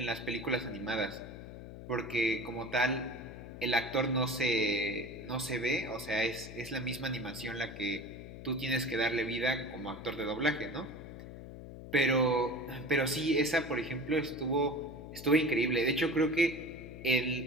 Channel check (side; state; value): left; noise; hum, 12 dB below the sound